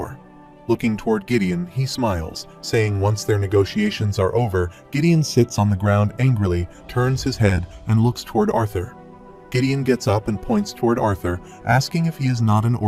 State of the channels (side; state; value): both; identical; correlation 1.00